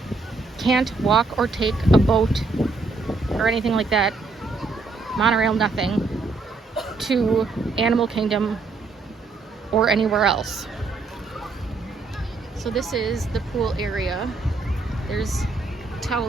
can't walk or take a boat or anything like that, monorail, nothing, to Animal Kingdom or anywhere else. So this is the pool area. There's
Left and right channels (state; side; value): quieter; left; 3.8 dB